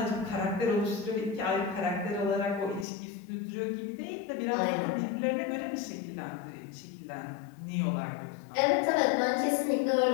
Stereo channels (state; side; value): drops out; right; at 2.9 s